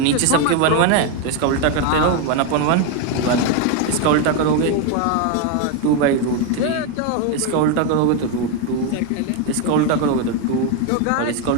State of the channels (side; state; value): both; different; correlation 0.02